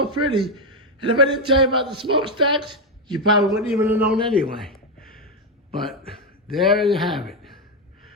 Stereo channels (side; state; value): both; normal; correlation 0.05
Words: pretty. And if I didn't tell you about the smokestacks, you probably wouldn't even have known anyway. But there you have it.